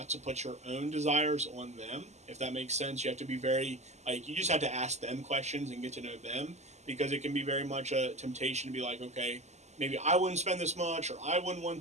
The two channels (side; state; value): left; late; 0.33 ms